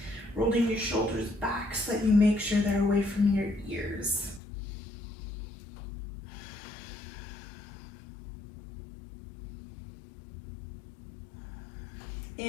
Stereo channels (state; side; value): drops out; right; at 4.4 s